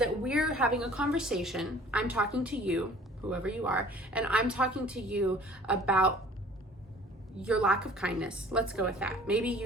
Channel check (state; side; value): normal; both; correlation 0.50